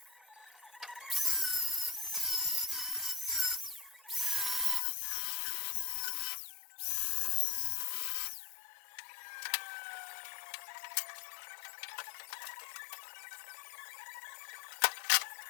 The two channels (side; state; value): right; drops out; at 4.8 s